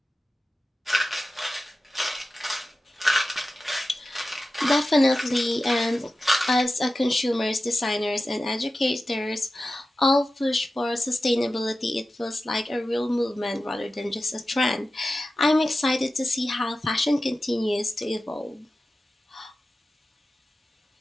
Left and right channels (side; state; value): both; normal; correlation 0.94